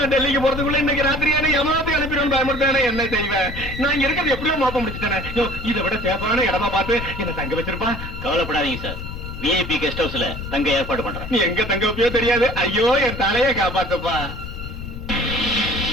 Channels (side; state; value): left; noise; rumble, 9 dB below the sound